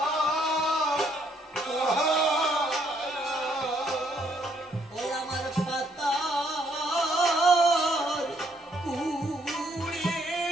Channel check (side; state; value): both; normal; correlation 0.70